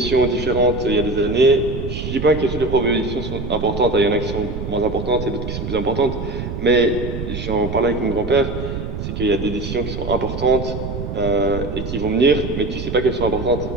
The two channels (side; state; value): right; noise; rumble, 6 dB below the sound